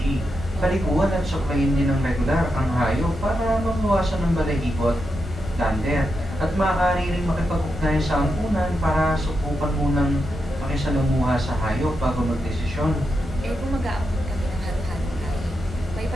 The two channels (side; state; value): both; normal; correlation 0.86